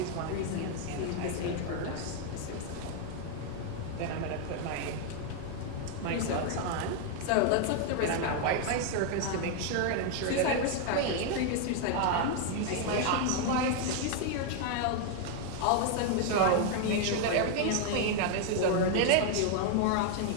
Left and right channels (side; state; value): both; different; correlation 0.01